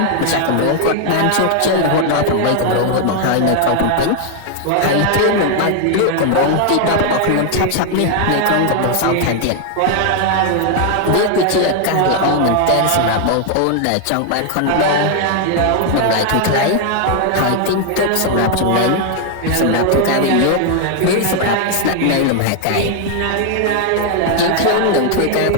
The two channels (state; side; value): different; both; correlation 0.00